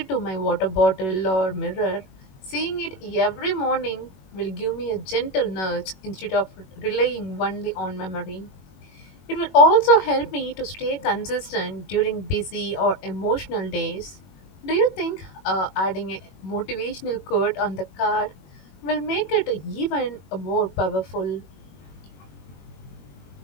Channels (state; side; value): late; right; 21 ms